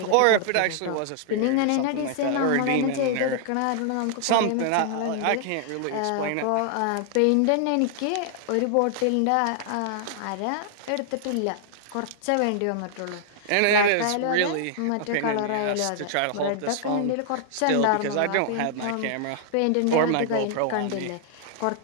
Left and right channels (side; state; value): both; different; correlation -0.01